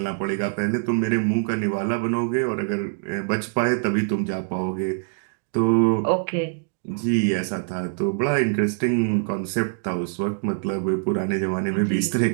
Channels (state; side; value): silent; left; digital silence